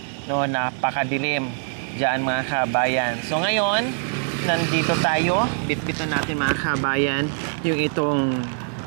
no, napakadilim dyan mga kabayan. So ngayon nandito tayo, bitbitan natin mga kabayan yung itong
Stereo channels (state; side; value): silent; left; 63 dB below the other